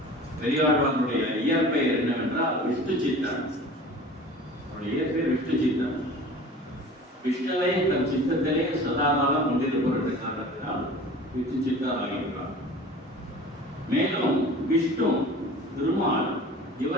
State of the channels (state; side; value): normal; both; correlation 0.41